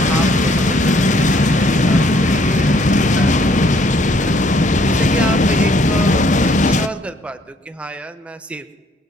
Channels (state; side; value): normal; both; correlation 0.65